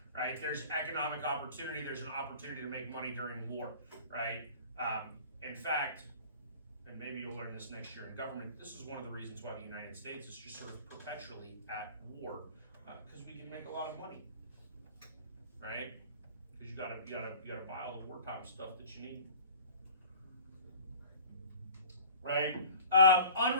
right? There's economic opportunity. There's an opportunity to make money during war, right? In fact, and maybe you'll learn this next year in government, this is one of the reasons why the United States is just sort of perpetually at war, because we can make a lot of money, right? Because you gotta buy all the wartime stuff that you need. Right?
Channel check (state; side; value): inverted; both; correlation -0.44